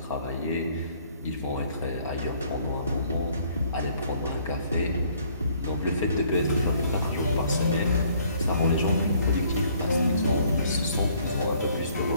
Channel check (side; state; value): both; inverted; correlation -0.61